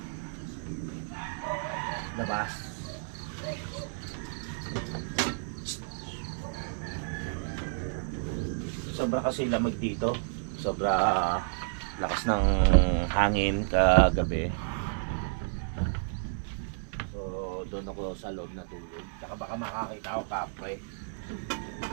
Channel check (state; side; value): silent; left; 57 dB below the other